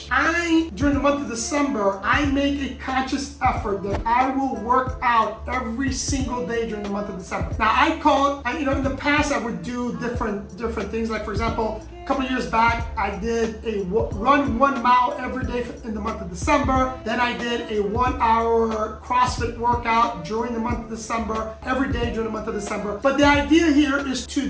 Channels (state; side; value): identical; both; correlation 1.00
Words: During the month of December, I make a conscious effort that I will work out every single day during the month of December. Now, in the past, I would do different things. Like, for example, a couple of years back, I did a run 1 mile every day in the month of December. Then I did a 1 hour CrossFit workout during the month of December, every day during the month of December. But the idea here is